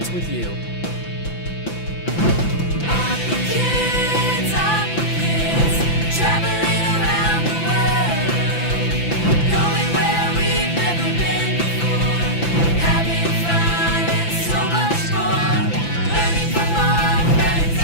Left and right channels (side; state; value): right; late; 5.9 ms